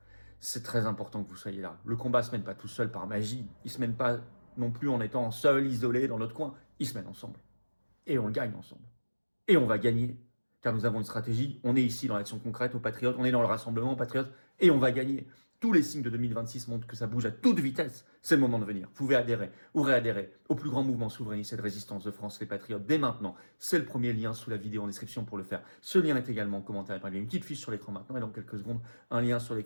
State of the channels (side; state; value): both; inverted; correlation -1.00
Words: C'est très important que vous soyez là. Le combat ne se mène pas tout seul par magie. Il ne se mène pas non plus en étant seul, isolé dans notre coin. Il se mène ensemble. Et on le gagne ensemble. Et on va gagner. Car nous avons une stratégie, on est ici dans l'action concrète aux Patriotes, on est dans le rassemblement aux Patriotes, et on va gagner. Tous les signes de 2026 montrent que ça bouge à toute vitesse. C'est le moment de venir. Vous pouvez adhérer ou réadhérer au plus grand mouvement souverainiste et de résistance de France, les Patriotes, dès maintenant. C'est le premier lien sous la vidéo en description pour le faire. Ce lien est également en commentaire. Il y a une petite fiche sur l'écran maintenant et dans quelques secondes, un lien sur